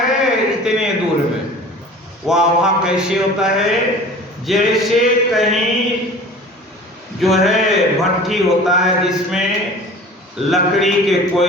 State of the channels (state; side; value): normal; both; correlation 0.42